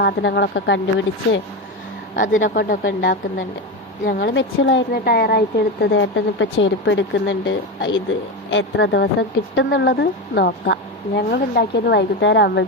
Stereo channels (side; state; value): both; normal; correlation 0.17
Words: കണ്ടുപിടിച്ച് അതിനെ കൊണ്ടൊക്കെ ഉണ്ടാക്കുന്നുണ്ട്. ഞങ്ങൾ മെച്ചിലായിരുന്നു ടയറായിട്ട് എടുത്തത്. ഏട്ടൻ ഇപ്പോൾ ചെരുപ്പ് എടുക്കുന്നുണ്ട്. ഇത് എത്ര ദിവസം കിട്ടുന്നുള്ളത് നോക്കാം. ഞങ്ങൾ ഉണ്ടാക്കിയത് വൈകുന്നേരം